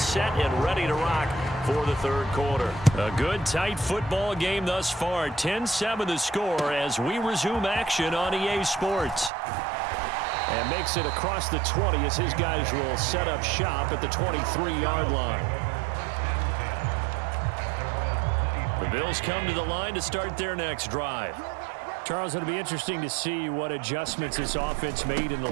and ready to rock for the third quarter. A good, tight football game thus far. 10-7 the score as we resume action on EA Sports. And makes it across the 20 as his guys will set up shop at the 23-yard line. The Bills come to the line to start their next drive. Charles, it'll be interesting to see what adjustments this offense made in the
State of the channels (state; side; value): drops out; left; at 9.3 s